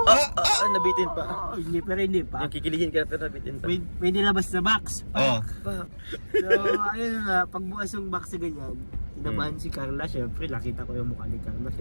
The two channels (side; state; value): both; inverted; correlation -1.00